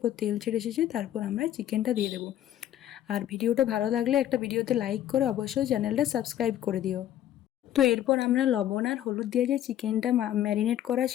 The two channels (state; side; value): quieter; right; 11.8 dB